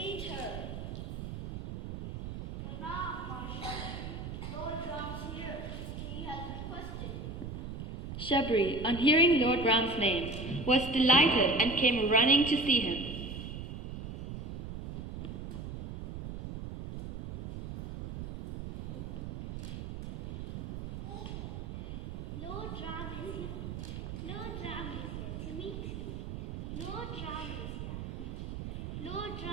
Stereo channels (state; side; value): noise; right; rumble, 7 dB below the sound